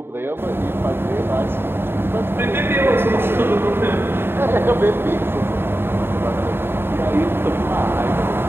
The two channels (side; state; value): left; late; 0.11 ms